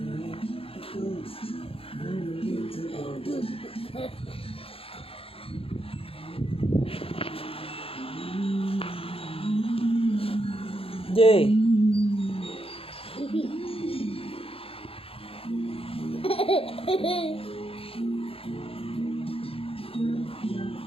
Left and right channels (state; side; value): late; right; 0.27 ms